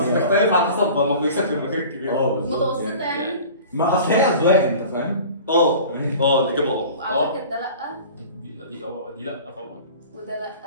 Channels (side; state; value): both; inverted; correlation -0.42